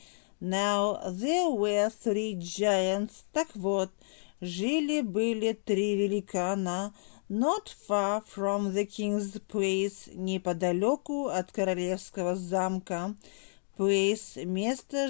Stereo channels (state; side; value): silent; right; digital silence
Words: Now there were three giants. Так вот, жили-были три великана, not far from the king's place, неподалеку от королевского замка. Place, место,